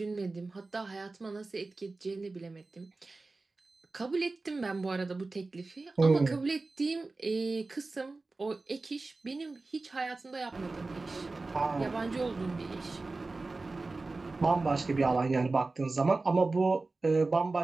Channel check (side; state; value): left; quieter; 3.5 dB